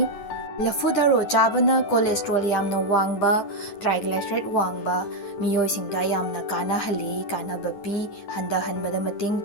Laphu Tharo chabana cholesterol yamna wangba triglyceride wangba miyoi singda yamna kana hali kana bapi handa hanbada mating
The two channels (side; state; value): right; late; 9.2 ms